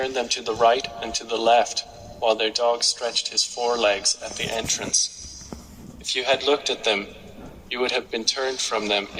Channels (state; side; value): identical; both; correlation 1.00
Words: them to the right and to the left, while their dog stretched his forelegs at the entrance. If you had looked at them, you would have been turned from them